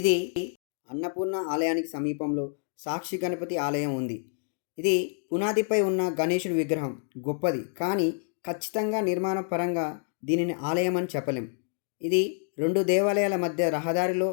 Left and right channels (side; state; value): right; silent; 59 dB below the other